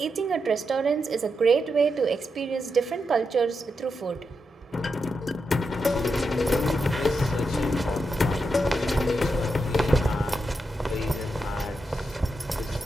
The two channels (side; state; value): both; normal; correlation 0.86